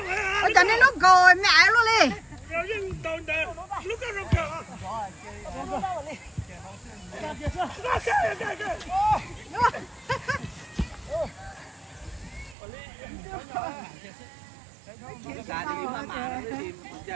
ôi cho nên nó gọi mẹ luôn đi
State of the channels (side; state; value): left; drops out; at 12.6 s